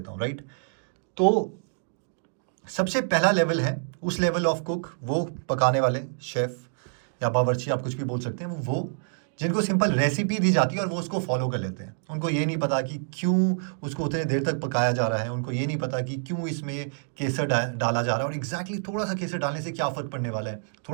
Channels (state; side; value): silent; left; digital silence